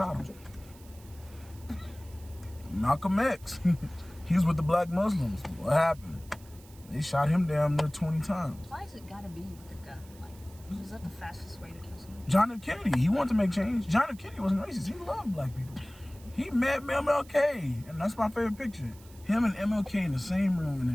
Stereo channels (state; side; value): noise; right; hiss, 24 dB below the sound